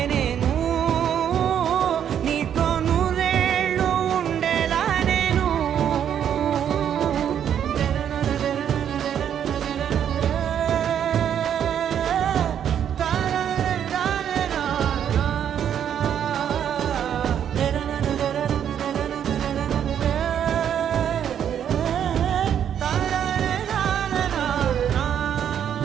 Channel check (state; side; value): quieter; left; 9.2 dB